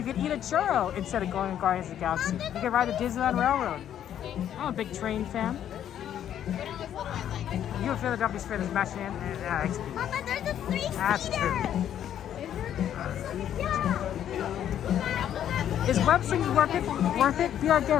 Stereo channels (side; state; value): right; quieter; 10.3 dB